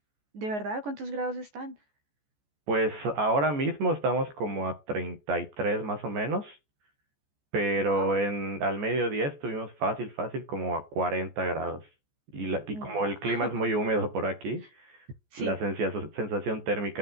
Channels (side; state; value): left; late; 14 ms